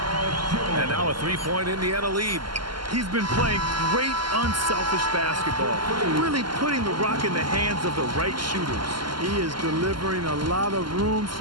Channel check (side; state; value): left; late; 0.72 ms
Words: And now a 3-point Indiana lead. He's been playing great, unselfish basketball, really putting the rock in the hands of the right shooters. He is delivering a lot of room